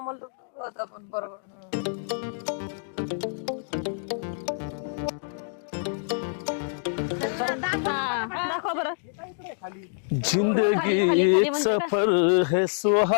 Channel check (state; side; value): silent; right; digital silence